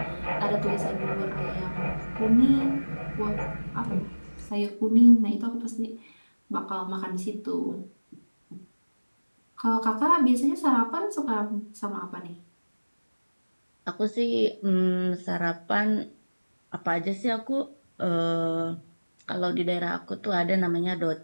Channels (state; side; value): inverted; both; correlation -1.00